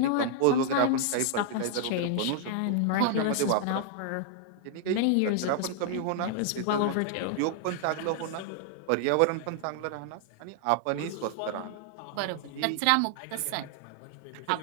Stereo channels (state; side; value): different; both; correlation -0.01